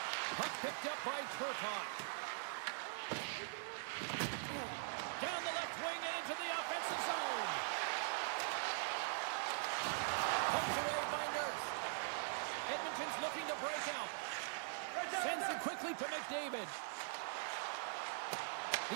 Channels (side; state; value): left; silent; digital silence